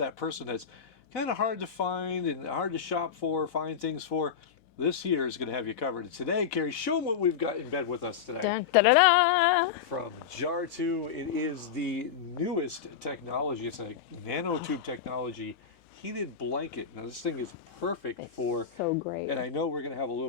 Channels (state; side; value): quieter; right; 7.3 dB